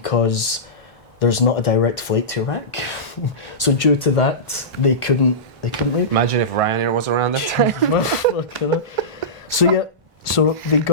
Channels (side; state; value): both; normal; correlation -0.18